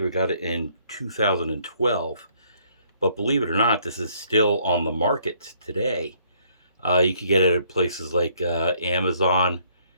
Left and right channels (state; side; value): inverted; both; correlation -0.65